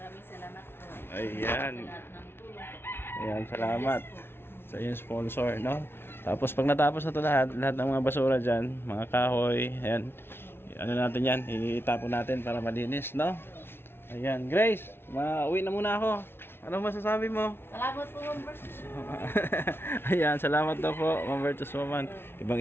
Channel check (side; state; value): right; late; 0.11 ms